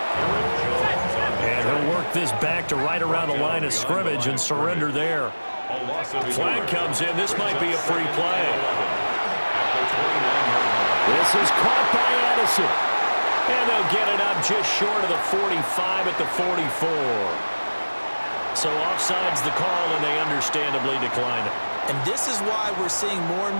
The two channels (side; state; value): both; inverted; correlation -1.00